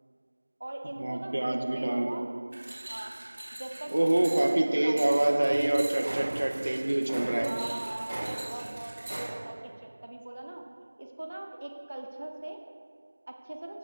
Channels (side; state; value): both; inverted; correlation -1.00